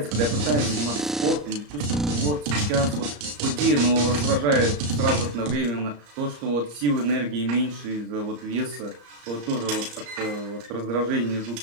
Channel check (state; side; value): late; left; 34 ms